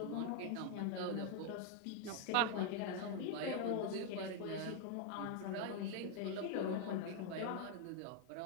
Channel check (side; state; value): both; different; correlation 0.01